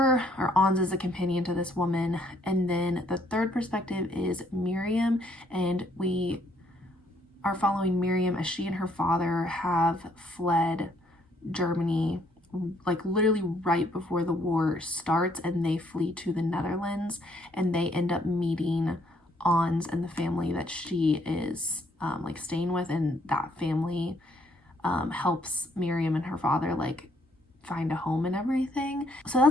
or Ons is a companion to this woman. And then the third perspective is Miriam, and we are following Miriam as she and her father have fled Germany, like literally right before the war starts, and they flee to the Netherlands, and they end up meeting Ons and the family that she is like staying with, and that family helps Miriam and her father like find a home and everything. So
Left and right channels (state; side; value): normal; both; correlation 0.68